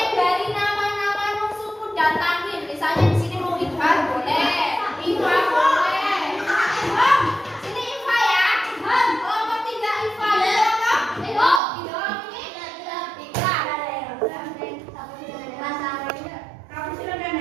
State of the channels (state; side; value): drops out; left; at 11.6 s